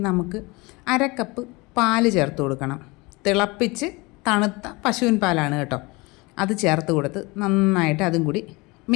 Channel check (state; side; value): quieter; right; 24.9 dB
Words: നമുക്ക് 1/2 കപ്പ് പാല് ചേർത്ത് കൊടുക്കണം. തിളപ്പിച്ച് തണുത്ത പശുവിൻ പാലാണ് കേട്ടോ. അത് ചേർത്ത് കൊടുത്ത് നന്നായിട്ട് അതും കൂടി